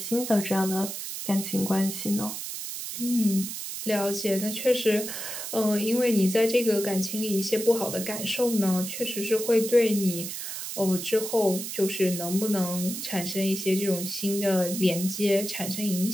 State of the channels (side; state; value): right; noise; hiss, 6 dB below the sound